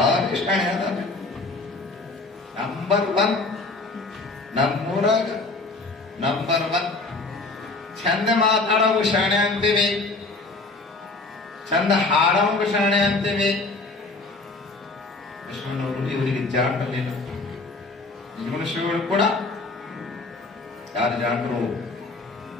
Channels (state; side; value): quieter; right; 3.4 dB